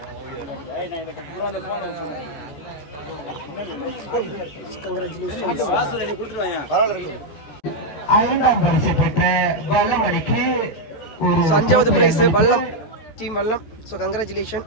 அஞ்சாவது prize Vallam team Vallam. So congratulation.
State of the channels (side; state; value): right; late; 14 ms